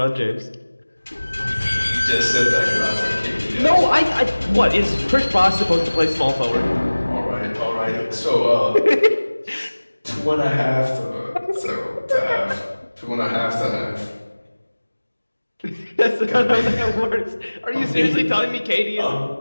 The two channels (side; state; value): both; inverted; correlation -1.00